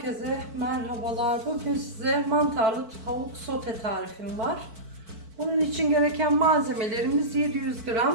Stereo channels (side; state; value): left; late; 4.5 ms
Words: merhabalar. Bugün size mantarlı tavuk sote tarifim var. Bunun için gereken malzemelerimiz 700